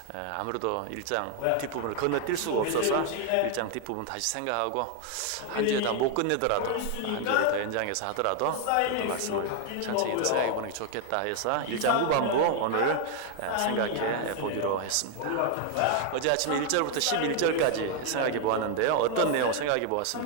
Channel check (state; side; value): different; both; correlation 0.00